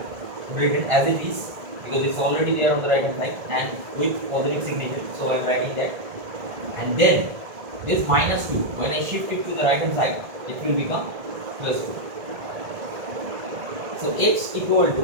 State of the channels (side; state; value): left; late; 1.7 ms